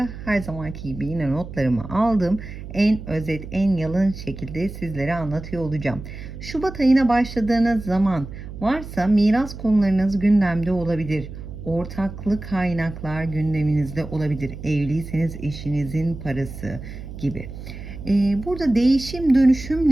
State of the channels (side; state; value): right; noise; hum, 11 dB below the sound